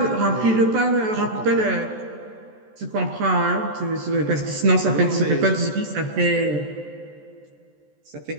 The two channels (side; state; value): left; late; 14 ms